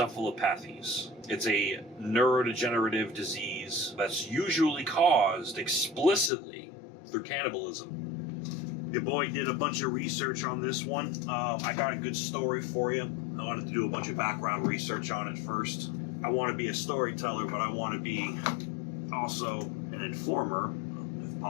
It's a neurodegenerative disease that's usually caused explicitly through cannibalism. Your boy did a bunch of research on this one. I got a good story for you. I wanted to do a bunch of background research on it first. I want to be a storyteller, but I want to be also an informer, if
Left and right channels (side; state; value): right; drops out; at 6.3 s